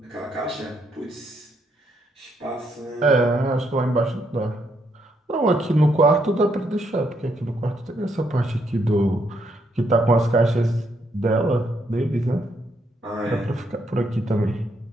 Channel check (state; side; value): normal; both; correlation 0.75